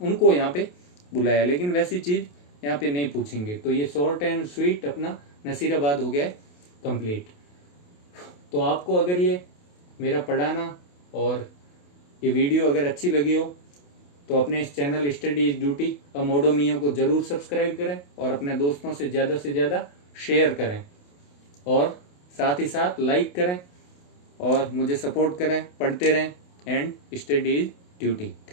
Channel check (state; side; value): late; right; 28 ms